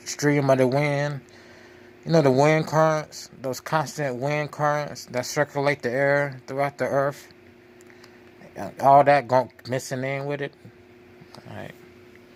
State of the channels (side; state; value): both; identical; correlation 1.00